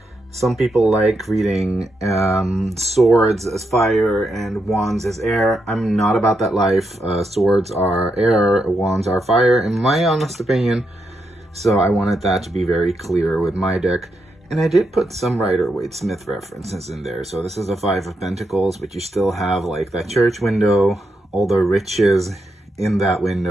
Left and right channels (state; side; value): normal; both; correlation 0.82